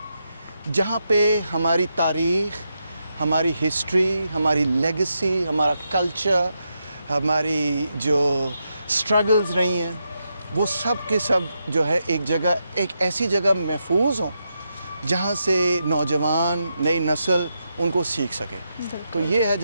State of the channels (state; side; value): inverted; both; correlation -0.84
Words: جہاں پہ ہماری تاریخ, ہماری ہسٹری, ہماری لیگسی, ہمارا کلچر, ہماری جو سٹرگلز رہی ہیں وہ سب کے سب جو ہے ایک جگہ, ایک ایسی جگہ محفوظ ہوں جہاں سے نوجوان, نئی نسل ان کو سیکھ سکے. تو یہ ہے